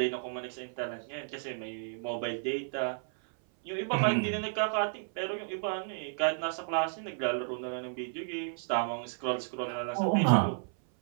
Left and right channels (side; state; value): left; silent; 56 dB below the other